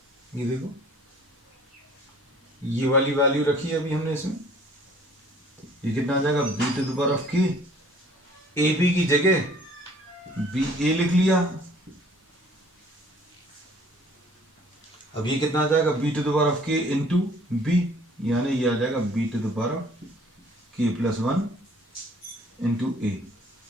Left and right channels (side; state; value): both; normal; correlation 0.55